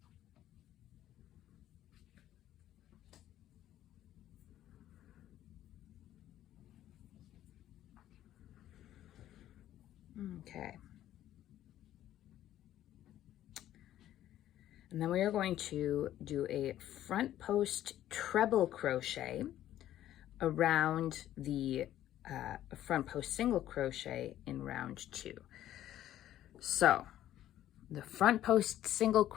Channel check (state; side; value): quieter; right; 12.6 dB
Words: Okay. And then we are going to do a front post treble crochet around the front post single crochet in round 2. So the front post single